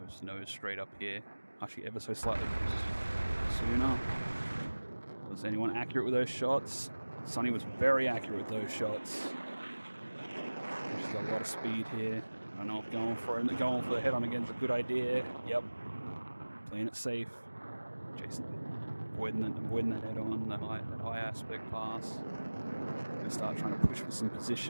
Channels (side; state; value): both; inverted; correlation -1.00